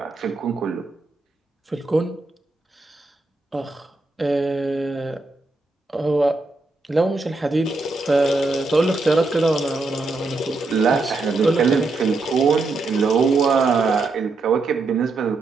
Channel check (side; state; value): left; quieter; 3.4 dB